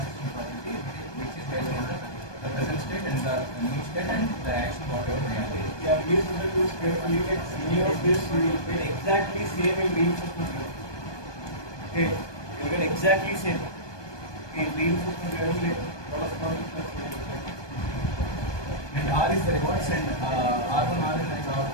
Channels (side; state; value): right; late; 1.2 ms